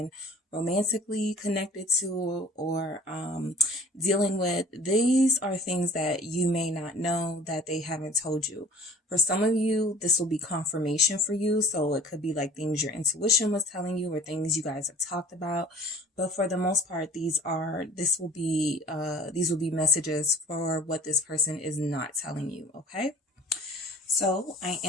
romantically connected to or dealing with, these are things that you may not know that they haven't told you. For some of you, this will be confirmation for you. So it could be like things your intuition was telling you or things you guys have talked about. But for the most part, these will be messages for what this person is not telling you. Okay. So I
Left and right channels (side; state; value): both; normal; correlation 0.48